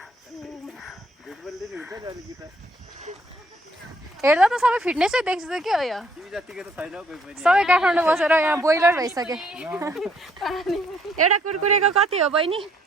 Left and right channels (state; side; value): normal; both; correlation 0.66